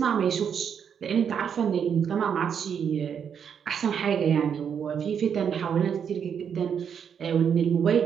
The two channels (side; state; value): left; quieter; 7.6 dB